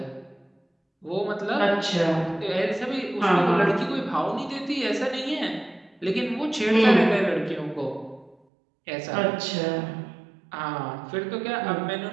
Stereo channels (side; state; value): left; drops out; at 8.3 s